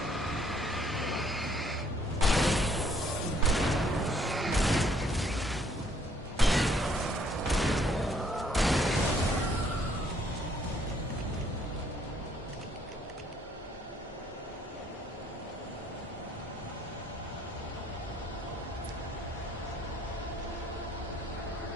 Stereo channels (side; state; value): both; normal; correlation 0.65